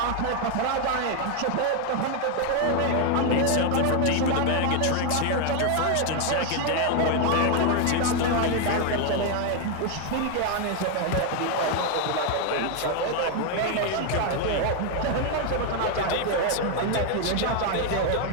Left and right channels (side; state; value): both; different; correlation 0.01